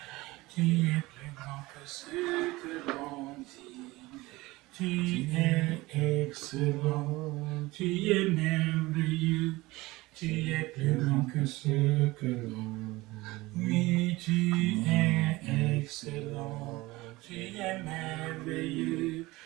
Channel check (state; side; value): quieter; left; 20.5 dB